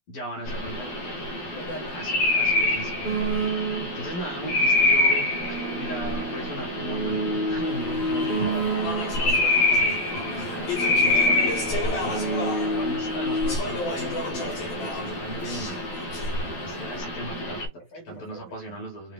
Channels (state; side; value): late; right; 12 ms